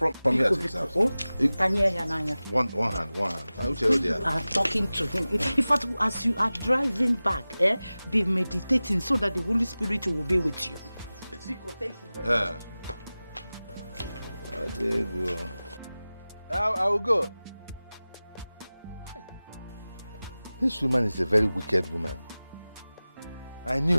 here to his house. One hand. I will tell you there. You are talking to him. In fact, as you are driving back, be meditating so that the Holy Spirit will be with you. Biko, thank you very much. There you go. I will go. This woman is a very wicked woman. I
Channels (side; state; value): both; inverted; correlation -0.97